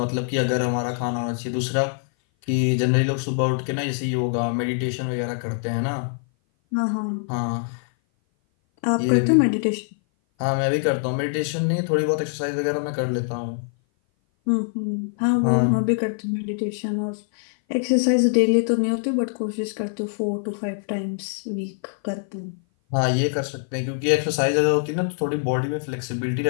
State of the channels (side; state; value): right; silent; 57 dB below the other